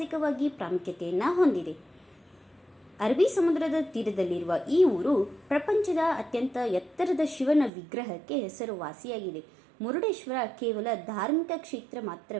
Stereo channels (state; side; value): drops out; left; at 7.7 s